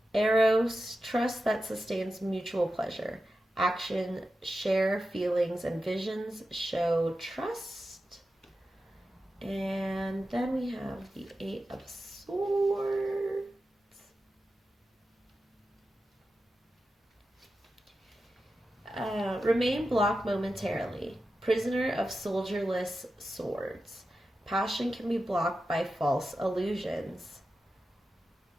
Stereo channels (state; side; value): normal; both; correlation 0.91